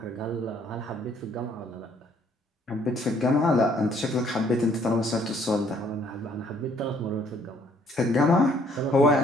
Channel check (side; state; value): both; normal; correlation 0.63